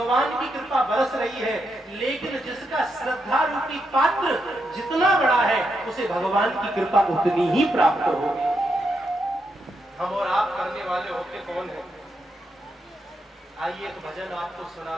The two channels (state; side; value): normal; both; correlation 0.82